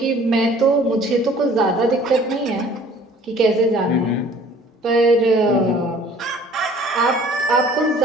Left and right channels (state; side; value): normal; both; correlation 0.52